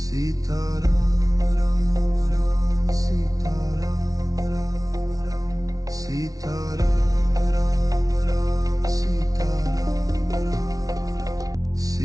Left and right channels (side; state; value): left; late; 0.18 ms